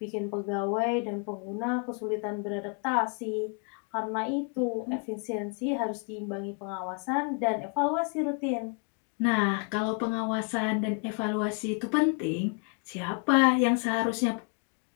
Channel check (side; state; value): right; quieter; 38.9 dB